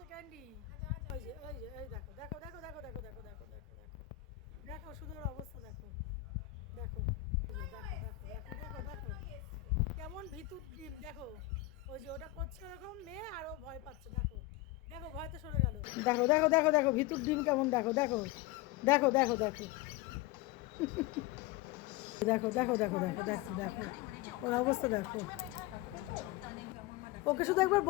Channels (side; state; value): right; quieter; 16.9 dB